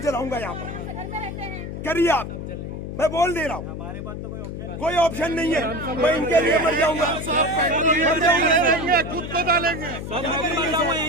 यहाँ पर, करिए आप, मैं बोल दे रहा हूँ। कोई ऑप्शन नहीं है, मैं इनके लिए मर जाऊंगा, खुद को डालेंगे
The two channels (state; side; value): noise; left; hum, 7 dB below the sound